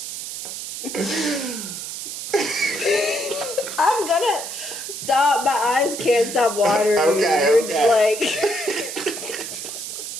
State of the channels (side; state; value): right; noise; hiss, 8 dB below the sound